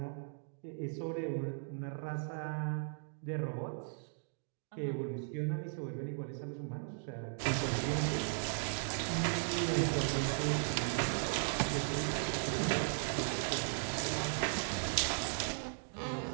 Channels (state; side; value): silent; left; digital silence